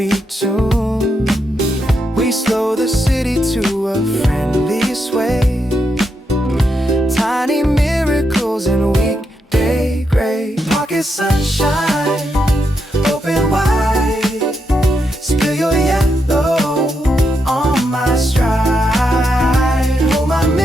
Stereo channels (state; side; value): normal; both; correlation 0.82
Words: tune. We slow the city to a friendly sway. Tiny miracles in weekday gray. Pocket sunshine, open wide. Spill your yellow on my stride. Hold my